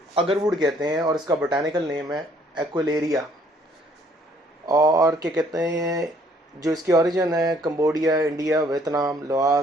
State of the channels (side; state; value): both; normal; correlation 0.62